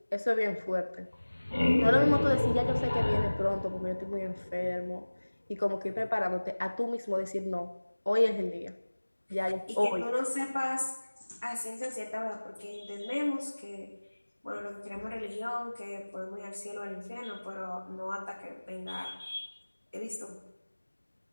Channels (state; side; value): inverted; both; correlation -1.00